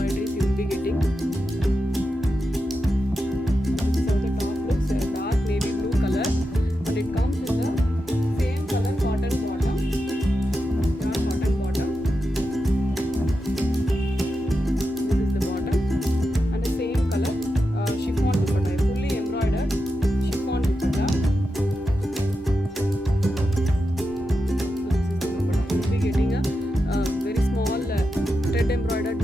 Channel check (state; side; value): normal; both; correlation 0.89